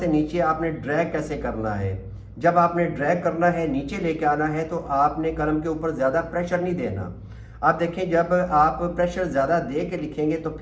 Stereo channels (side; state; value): both; identical; correlation 1.00